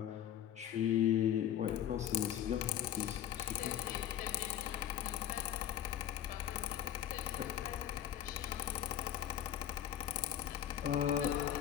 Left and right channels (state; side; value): quieter; right; 10.6 dB